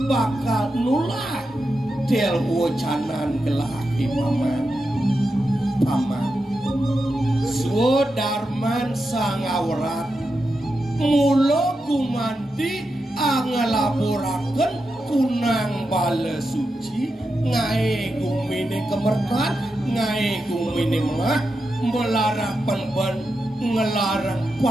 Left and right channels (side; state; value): both; normal; correlation 0.88